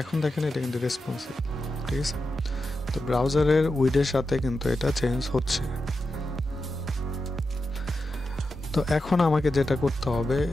এখন দেখেন এটা কিন্তু রেসপন্সিভ, ঠিক আছে। তো ব্রাউজারের উইডের সাথে কিন্তু এটা চেঞ্জ হচ্ছে। তো এখন আমাকে যেটা করতে হবে,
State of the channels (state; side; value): normal; both; correlation 0.89